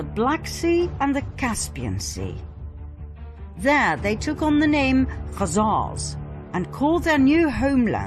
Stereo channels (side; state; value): both; identical; correlation 1.00